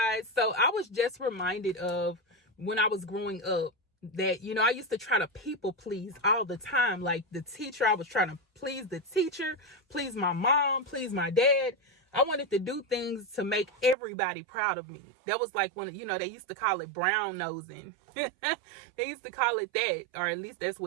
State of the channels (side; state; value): left; drops out; at 14.0 s